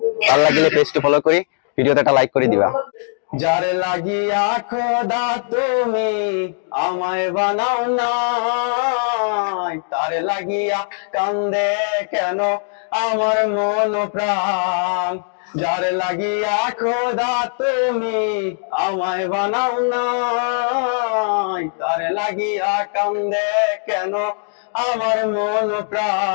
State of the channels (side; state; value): right; silent; digital silence